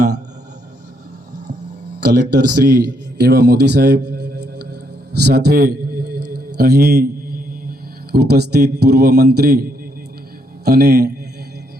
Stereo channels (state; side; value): normal; both; correlation 0.74